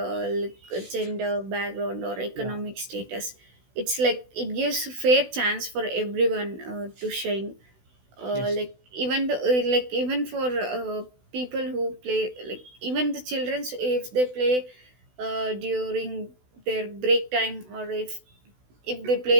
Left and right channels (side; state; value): left; late; 16 ms